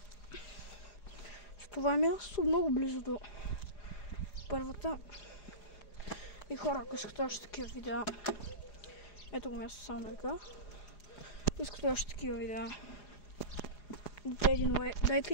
С това е място много близо до първата. И хора, ако искате още такива видеа, ето го място само да кажа. Ако искате още такива видеа,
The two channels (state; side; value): late; right; 4.9 ms